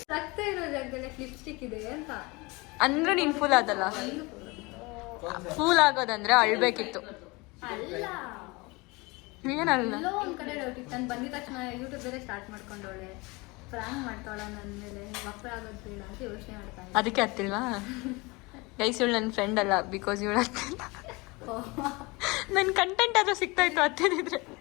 ರಕ್ತ ಇರೋ ಜಾಗದಲ್ಲಿ ಲಿಪ್ಸ್ಟಿಕ್ ಇದೆ ಅಂತ ಅಂದ್ರೆ ನೀನ್ ಫುಲ್ ಆದಲ್ಲ. ಫೂಲ್ ಆಗೋದಂದ್ರೆ ಅಳ್ಬೇಕಿತ್ತು. ಅಲ್ಲ, ಏನಲ್ಲ, ಎಲ್ಲೋ ಒಂದ್ ಕಡೆ ಡೌಟ್ ಇತ್ತು. ನಾನು ಬಂದಿದ ತಕ್ಷಣ ಯೂಟ್ಯೂಬ್ ಬೇರೆ ಸ್ಟಾರ್ಟ್ ಮಾಡ್ಕೊಂಡವಳೆ, ಫ್ರ್ಯಾಂಕ್ ಮಾಡ್ತಾಳ ನನ್ನ ಮೇಲೆ, ವಕ್ರ ಆಗೋದು ಬೇಡ ಅಂತ ಯೋಚನೆ ಮಾಡ್ತಾ ಇದ್ದೆ. ಅದಕ್ಕೆ ಹತ್ತಿಲ್ವಾ ಗೈಸ್? ಇವಳು ನನ್ನ ಫ್ರೆಂಡ್ ಅಲ್ಲ, ಬಿಕಾಸ್ ಇವಳು ಹತ್ತಿಲ್ಲ. ನನ್ನ ಕಂಟೆಂಟ್ ಆದ್ರೂ ಸಿಗ್ತಾ ಇತ್ತು ಹತ್ತಿದ್ರೆ.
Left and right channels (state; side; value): quieter; right; 25.2 dB